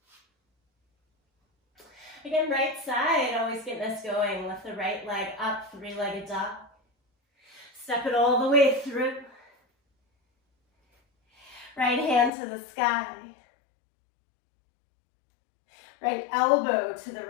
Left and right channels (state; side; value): drops out; right; at 12.3 s